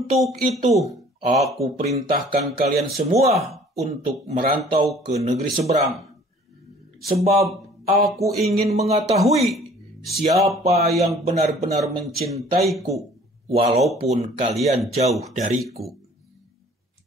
itu, aku perintahkan kalian semua untuk merantau ke negeri seberang. Sebab aku ingin mengetahui siapa yang benar-benar mencintaiku, walaupun kalian jauh dariku.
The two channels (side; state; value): both; normal; correlation 0.53